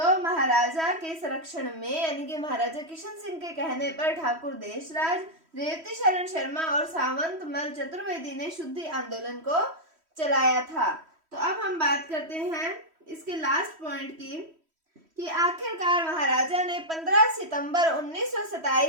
महाराजा के संरक्षण में यानी कि महाराजा किशन सिंह के कहने पर ठाकुर देशराज, रेवती शरण शर्मा और सावंतमल चतुर्वेदी ने शुद्धि आंदोलन को चलाया था। तो अब हम बात करते हैं इसके लास्ट पॉइंट की कि आखिरकार महाराजा ने 15 सितंबर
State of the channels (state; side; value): late; left; 3.1 ms